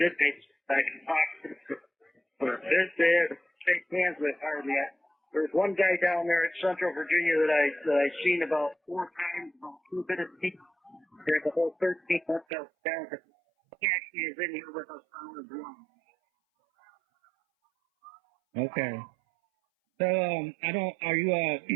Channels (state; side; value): drops out; left; at 12.5 s